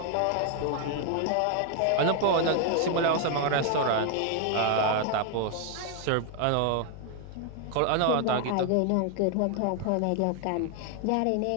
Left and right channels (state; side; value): different; both; correlation 0.00